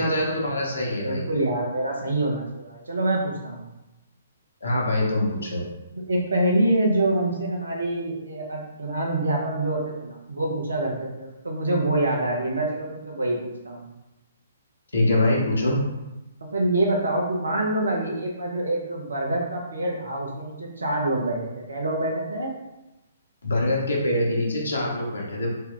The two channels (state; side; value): inverted; both; correlation -0.68